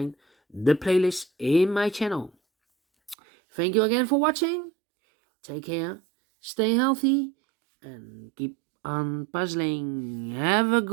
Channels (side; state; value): left; drops out; at 3.2 s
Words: the playlist in my channel. Thank you again for watching. Take care, stay healthy, and keep on puzzling. Have a